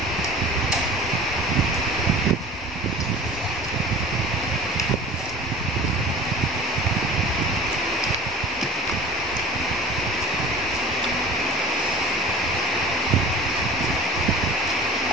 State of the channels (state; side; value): normal; both; correlation 0.41